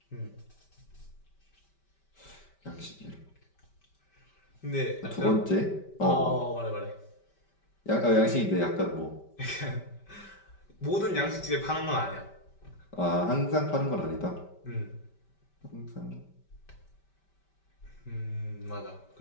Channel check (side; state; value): right; late; 5.1 ms